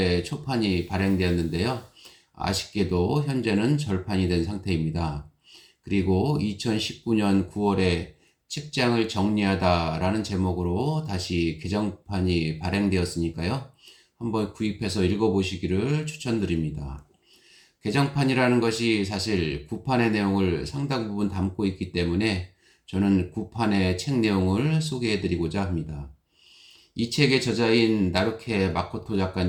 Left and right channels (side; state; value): both; identical; correlation 1.00